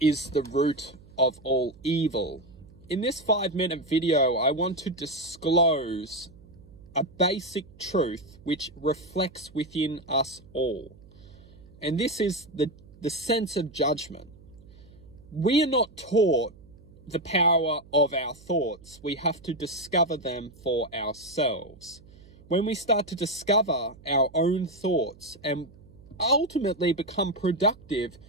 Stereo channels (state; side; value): noise; right; hum, 23 dB below the sound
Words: the root of all evil. In this 5-minute video, I want to disclose a basic truth which reflects within us all. And this is the sense of judgment. We are not taught the power of our thoughts. We have to discover them for ourselves. When we start to discover our own thoughts and ultimately become productive